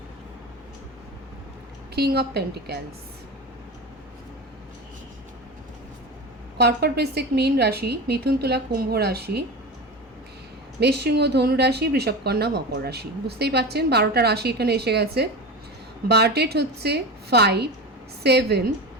King of Pentacles। কর্কট বৃশ্চিক মীন রাশি, মিথুন তুলা কুম্ভ রাশি, মেষসিংহ ধনু রাশি, বৃষভ কন্যা মকর রাশি। বুঝতেই পারছেন 12টা রাশি এখানে এসে গেছে। বার ডেট হচ্ছে 5, 7,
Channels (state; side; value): normal; both; correlation 0.26